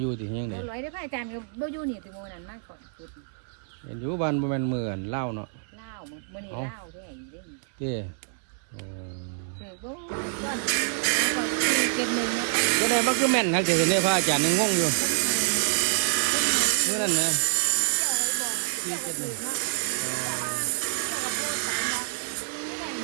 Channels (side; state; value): left; silent; digital silence